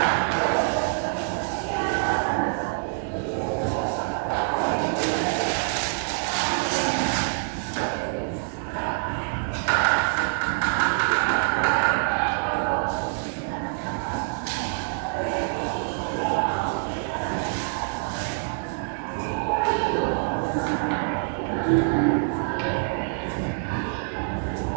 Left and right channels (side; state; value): left; silent; 61 dB below the other